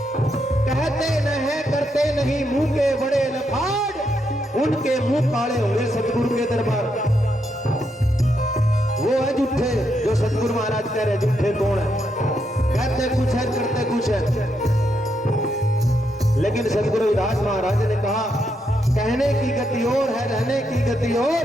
कहते न है करते नहीं, मुंह के बड़े लफाड़, उनके मुंह काले हुए सतगुरु के दरबार। वो है झूठे जो सतगुरु महाराज कह रहे, झूठे कौन है? कहते कुछ है करते कुछ है। लेकिन सतगुरु रविदास महाराज ने कहा कहने की गति और है, रहने की गति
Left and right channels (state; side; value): normal; both; correlation 0.80